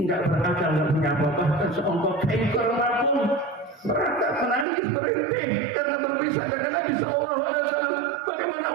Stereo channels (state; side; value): drops out; left; at 4.7 s